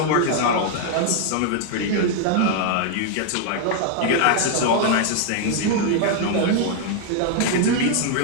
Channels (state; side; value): different; both; correlation 0.00